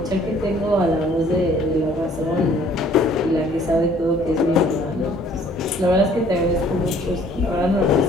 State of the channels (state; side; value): normal; both; correlation 0.57